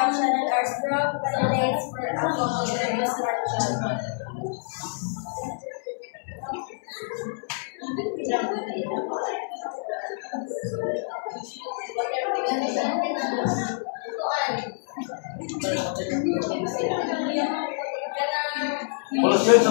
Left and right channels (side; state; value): right; silent; 60 dB below the other